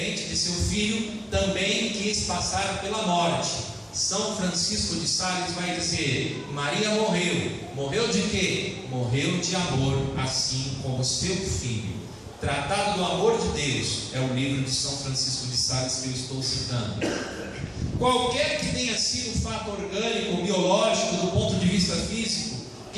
de seu filho, também quis passar pela morte. São Francisco de Sales vai dizer: Maria morreu de quê? Morreu de amor, assim como seu filho. Tratado do Amor de Deus é o livro de São Francisco de Sales que eu estou citando. Qualquer que tenha sido o fato orgânico, biológico, do ponto de vista físico,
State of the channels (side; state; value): both; identical; correlation 1.00